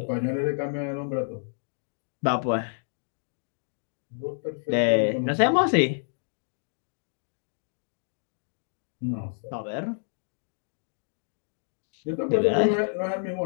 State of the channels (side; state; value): right; silent; digital silence